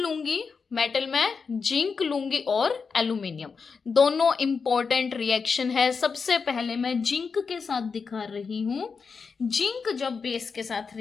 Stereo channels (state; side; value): quieter; right; 5.3 dB